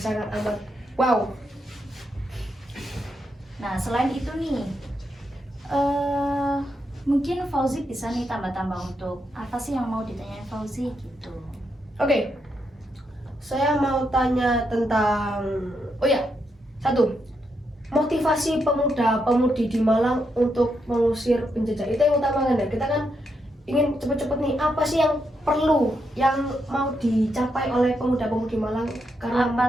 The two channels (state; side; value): normal; both; correlation 0.81